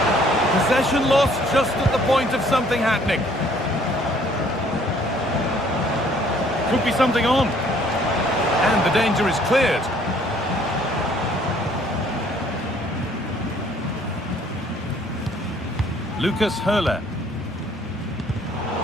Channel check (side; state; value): both; normal; correlation 0.60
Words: Possession lost just at the point of something happening. Could be something on. And the danger is cleared. Lucas Höhler.